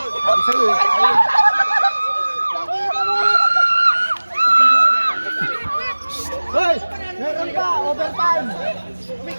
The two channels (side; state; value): both; inverted; correlation -1.00